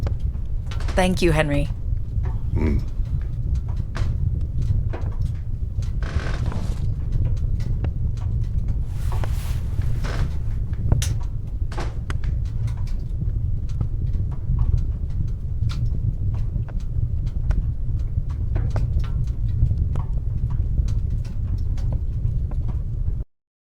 Thank you, Henry.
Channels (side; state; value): both; identical; correlation 1.00